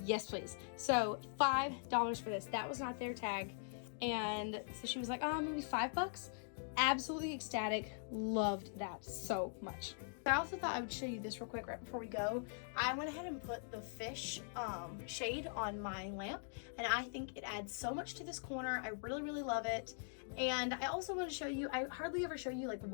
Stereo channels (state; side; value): silent; right; digital silence